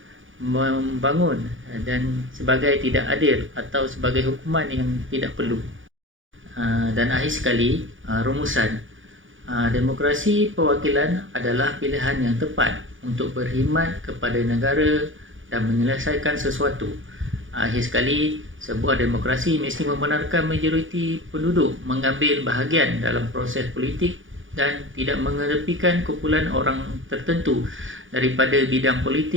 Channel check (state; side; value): late; left; 0.57 ms